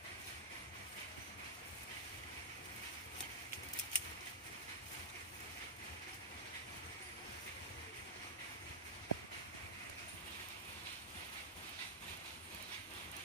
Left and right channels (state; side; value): normal; both; correlation -0.07